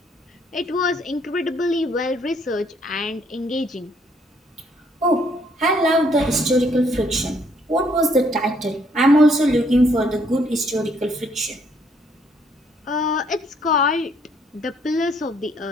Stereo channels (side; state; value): both; normal; correlation 0.67